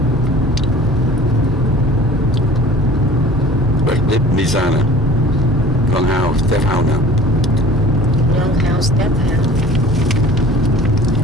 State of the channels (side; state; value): both; normal; correlation 0.47